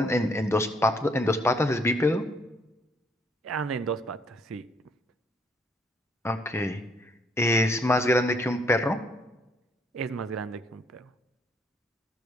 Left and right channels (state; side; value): normal; both; correlation 0.68